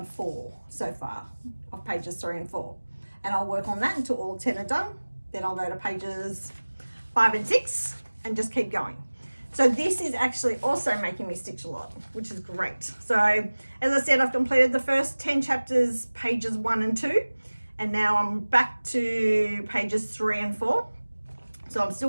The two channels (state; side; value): inverted; both; correlation -1.00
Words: 4 so far of pages 3 and 4. And I'll work on that until all 10 are done. Then I'll go to pages 5 and 6 and just keep going. So this is actually also making me stitch a lot, which is great. So as I said, I've completed the first 10 chapters, pages 1 and 2, and now I'm back to pages 3 and 4. So I'm still